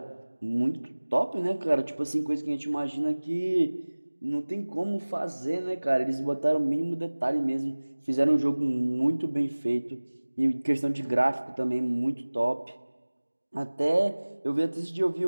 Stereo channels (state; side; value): inverted; both; correlation -1.00